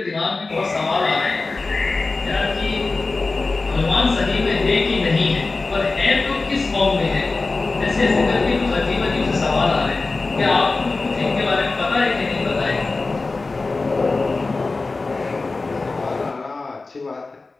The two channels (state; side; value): quieter; right; 3.6 dB